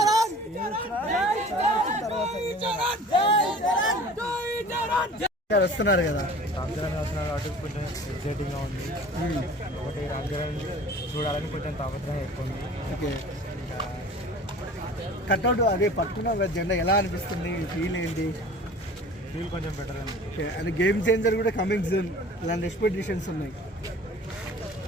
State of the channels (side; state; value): both; normal; correlation 0.45